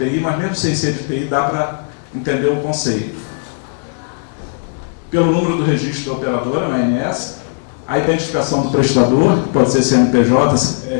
mas mesmo sem ser de TI, dá para entender o conceito. Pelo número do registro da operadora, na ANS, a identificação do prestador, que pode ser CNPJ,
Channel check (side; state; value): right; silent; 69 dB below the other